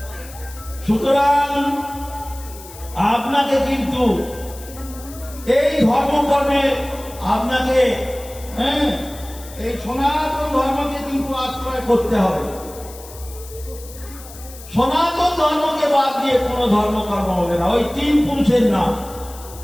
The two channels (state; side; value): noise; left; hiss, 17 dB below the sound